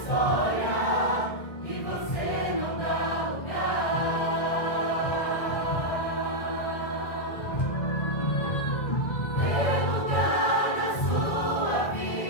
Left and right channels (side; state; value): right; late; 2.0 ms